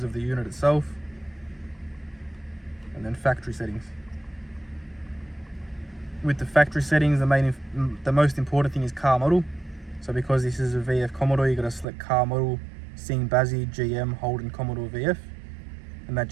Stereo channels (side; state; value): left; drops out; at 11.9 s